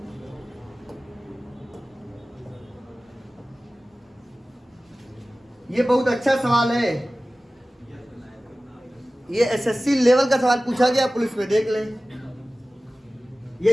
ये बहुत अच्छा सवाल है, ये एसएससी लेवल का सवाल पूछा गया पुलिस में, देख लें। ये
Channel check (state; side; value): normal; both; correlation 0.97